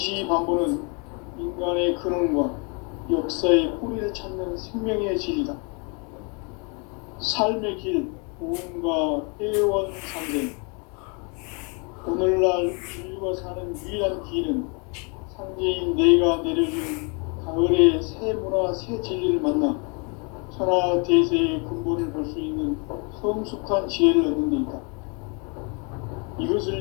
인간의 근원과 역사의 뿌리를 찾는 생명의 질이다. 삶의 길, 고음과 회원상생. 오늘날 인류가 사는 유일한 길은 상제인 내가 내려준 가을의 새 문화, 새 진리를 만나 천하 대세의 근본을 볼 수 있는 성숙한 지혜를 얻는 데 있다. 이것을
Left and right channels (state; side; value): quieter; right; 34.4 dB